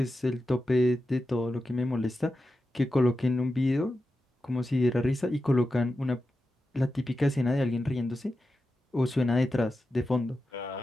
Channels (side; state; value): both; normal; correlation 0.90